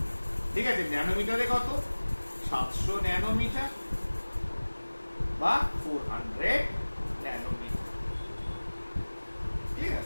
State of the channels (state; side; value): inverted; both; correlation -1.00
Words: ঠিক আছে, ন্যানোমিটারে কত? 700 ন্যানোমিটার বা 400 ন্যানোমিটার। ঠিক